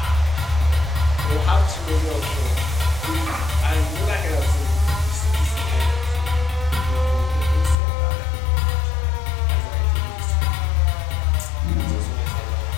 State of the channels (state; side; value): drops out; right; at 7.8 s